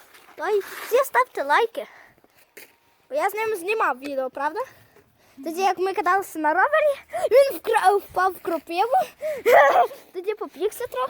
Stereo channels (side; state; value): both; identical; correlation 1.00